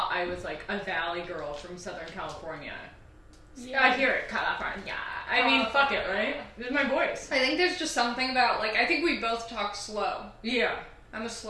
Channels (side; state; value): both; identical; correlation 1.00